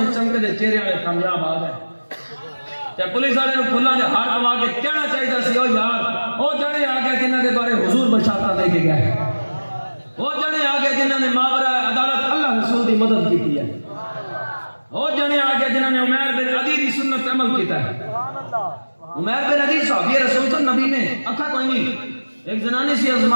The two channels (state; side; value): inverted; both; correlation -1.00